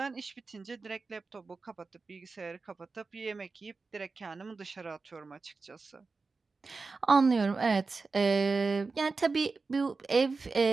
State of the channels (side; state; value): left; quieter; 4.1 dB